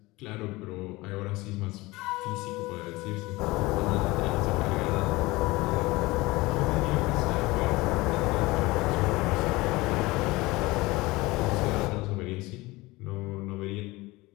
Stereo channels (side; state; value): right; quieter; 21.3 dB